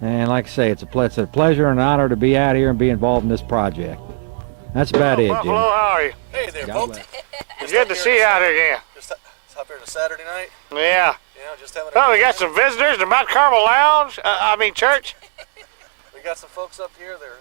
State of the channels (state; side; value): silent; left; 68 dB below the other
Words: And like I say, it's a pleasure and an honor to be out here and be involved in this project. That's about it, Buffalo, Jim. how are you? Hey there, folks. It's good to see you out here again. Just up here on a Saturday night. Yeah. You know, just having Oh, we got some visitors to Mount Carmel Lounge. Church. We got some folks up here.